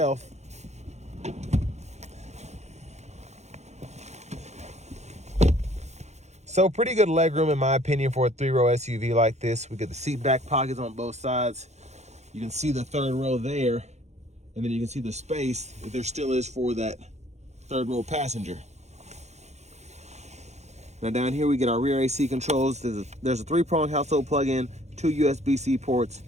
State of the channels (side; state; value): left; late; 0.33 ms